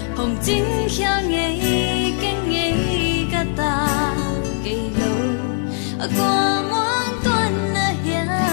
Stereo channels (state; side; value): silent; right; 61 dB below the other